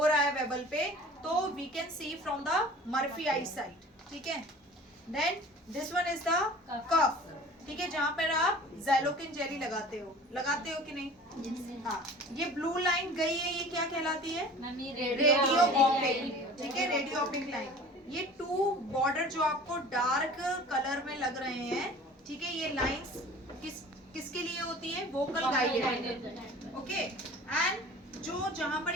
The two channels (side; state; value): both; normal; correlation 0.43